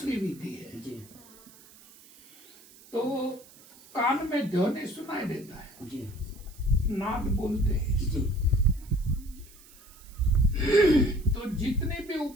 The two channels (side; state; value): right; noise; hiss, 23 dB below the sound